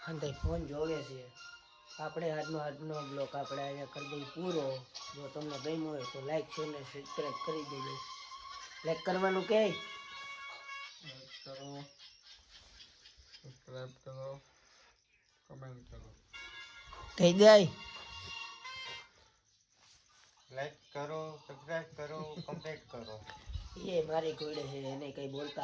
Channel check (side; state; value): both; identical; correlation 1.00